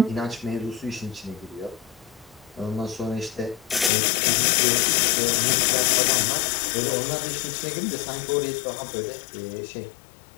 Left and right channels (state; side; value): drops out; right; at 3.9 s